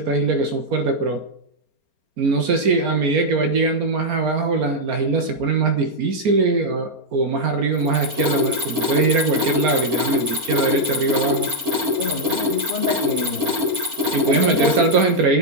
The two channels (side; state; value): left; late; 4.3 ms